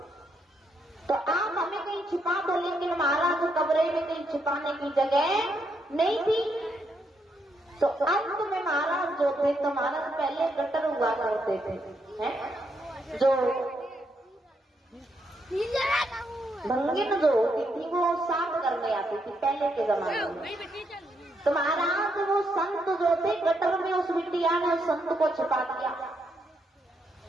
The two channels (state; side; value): normal; both; correlation 0.78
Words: तो आप हमें कहीं छिपा दो। लेकिन महाराज कमरे में कहीं छिपाने की जगह नहीं थी। तो अंत में महाराज जो थे, तो महाराज पहले गटर हुआ करते थे, हैं? जो भंगिन जो होती थी वो साफ करने आती थी पहले के जमाने में। तो महाराज वो संत जो थे, गटर में उस बिटिया ने उस संत को छिपा दिया।